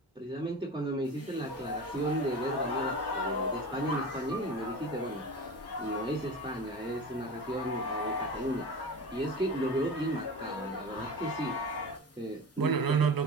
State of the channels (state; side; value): normal; both; correlation 0.31